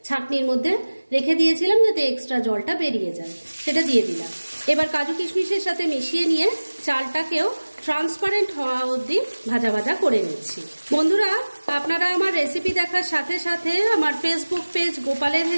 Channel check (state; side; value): inverted; both; correlation -1.00